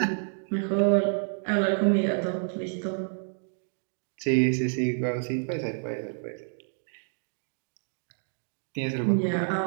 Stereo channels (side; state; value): left; silent; 59 dB below the other